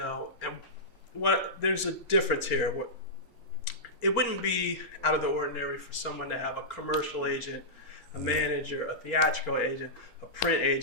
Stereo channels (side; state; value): both; normal; correlation -0.14